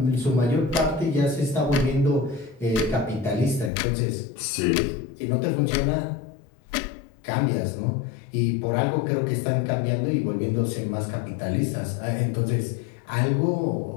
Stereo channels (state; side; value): drops out; right; at 3.7 s